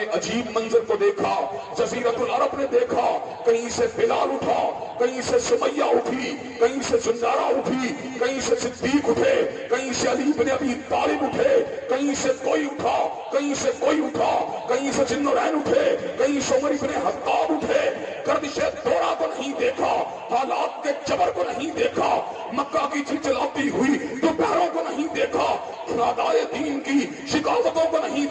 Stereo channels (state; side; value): identical; both; correlation 1.00